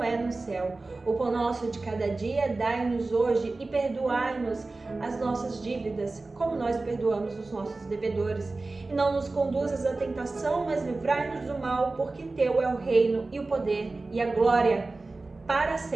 é no céu. O pão nosso de cada dia dai-nos hoje e perdoai-nos as nossas dívidas, como nós perdoamos os nossos devedores. E não nos conduzas à tentação, mas livrai-nos do mal, porque teu é o reino e o poder e a glória para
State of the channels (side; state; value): left; quieter; 3.4 dB